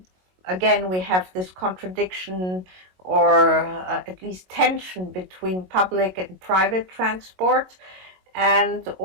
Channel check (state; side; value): late; left; 22 ms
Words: again, we have this contradiction, or at least tension, between public and private transport, and